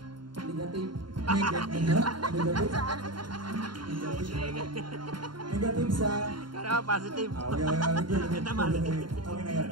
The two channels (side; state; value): left; late; 0.72 ms